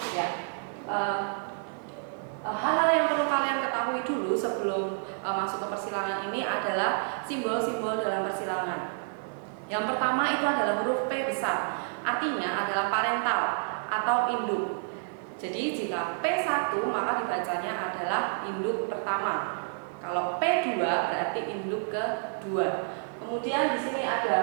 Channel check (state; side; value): silent; left; digital silence